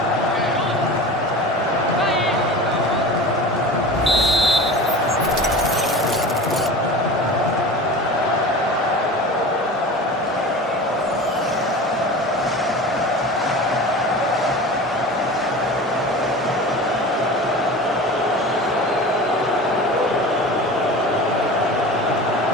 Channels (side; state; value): both; normal; correlation 0.35